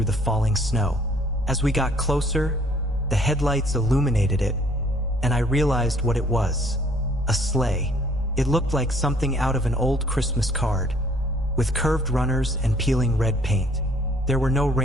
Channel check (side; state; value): both; normal; correlation 0.60